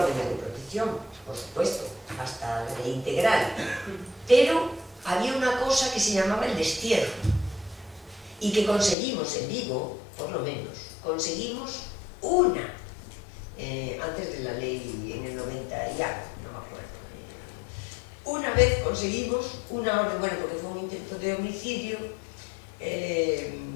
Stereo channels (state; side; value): drops out; right; at 9.0 s